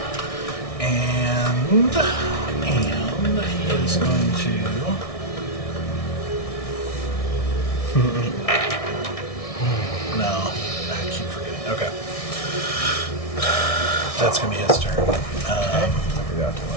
And he is going to. No, I keep forgetting. Okay, that's gonna be his turn. I forgot to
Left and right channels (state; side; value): late; right; 1.6 ms